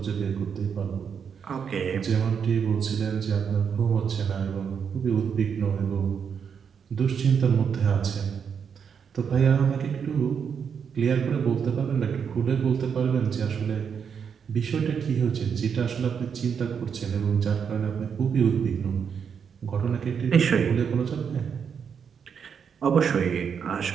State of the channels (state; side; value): quieter; left; 7.0 dB